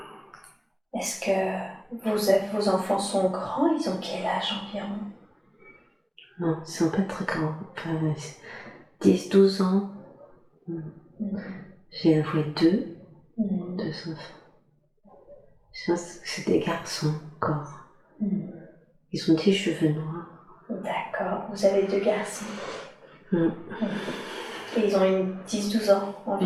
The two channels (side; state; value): both; identical; correlation 1.00